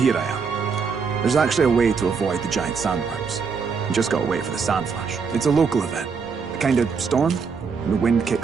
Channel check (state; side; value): quieter; left; 5.6 dB